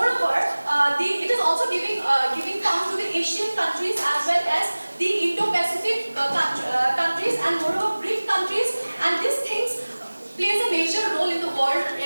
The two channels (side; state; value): both; inverted; correlation -1.00